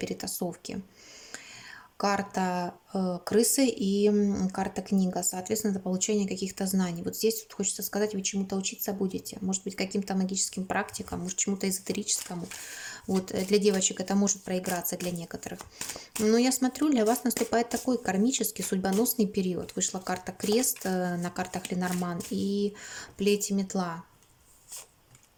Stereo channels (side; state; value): both; identical; correlation 1.00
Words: Карта крысы и карта книга. Соответственно, это получение каких-то знаний. Вот здесь вот хочется сказать, вы чему-то учиться будете. Может быть, каким-то магическим практикам, может, чему-то эзотерическому. Вот для девочек это может проиграться для некоторых. Но я смотрю, для вас наступает такой кармический, судьбоносный период. Вышла карта крест на картах Ленорман и плеть и метла.